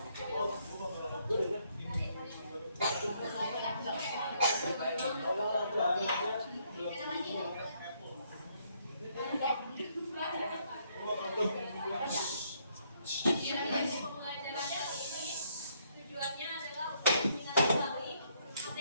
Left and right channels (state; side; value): inverted; both; correlation -0.71